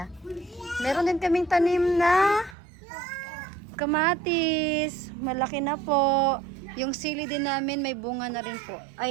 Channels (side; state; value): left; drops out; at 2.6 s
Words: Meron din kaming tanim na kamatis. Malaki na po. Yung sili din namin may bunga na rin po.